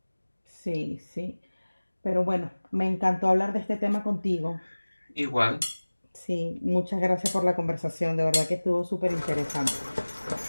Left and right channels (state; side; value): inverted; both; correlation -1.00